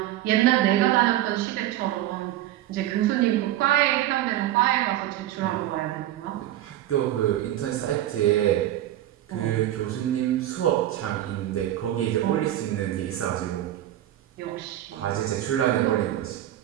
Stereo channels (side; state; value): left; quieter; 13.4 dB